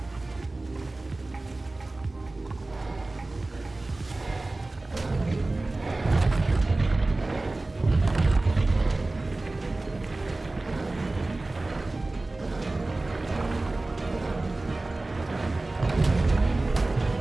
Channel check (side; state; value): left; quieter; 3.0 dB